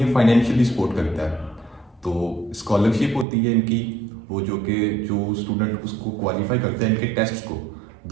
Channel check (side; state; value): left; drops out; at 3.2 s